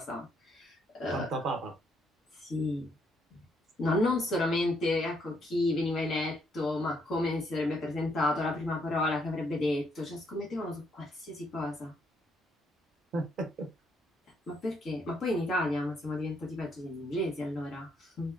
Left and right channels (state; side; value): normal; both; correlation 0.73